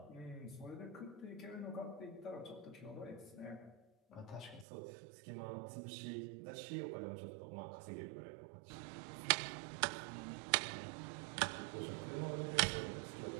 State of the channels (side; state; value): left; drops out; at 4.7 s